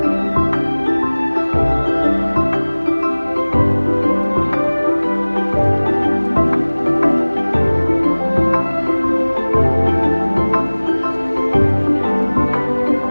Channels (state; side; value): inverted; both; correlation -1.00